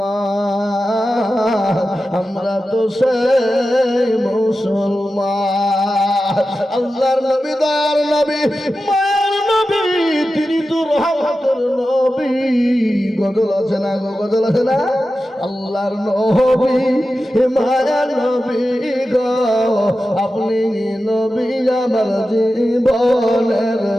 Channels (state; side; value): normal; both; correlation 0.93